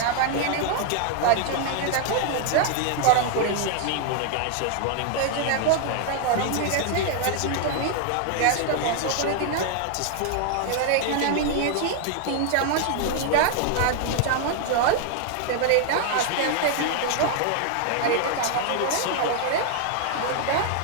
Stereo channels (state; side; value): different; both; correlation 0.00